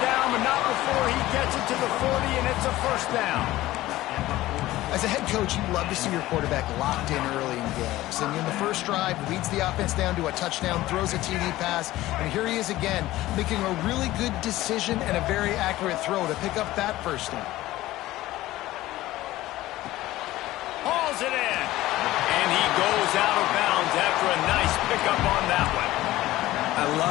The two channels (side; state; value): right; quieter; 16.5 dB